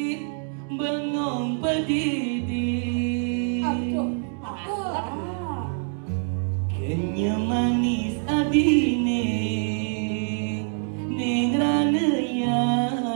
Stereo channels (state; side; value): silent; left; 62 dB below the other